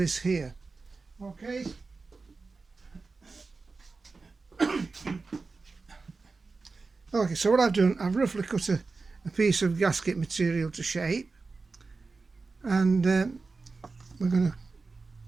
here. Okay. Okay, so what I've done, I've roughly cut a piece of gasket material to shape, and we're going to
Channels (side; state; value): left; quieter; 4.1 dB